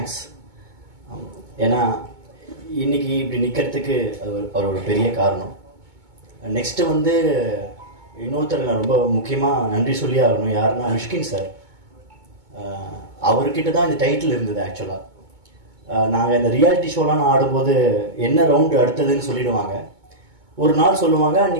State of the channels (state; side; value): late; left; 2.2 ms